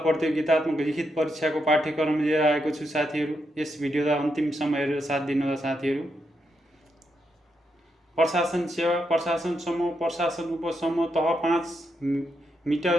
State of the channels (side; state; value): both; normal; correlation 0.82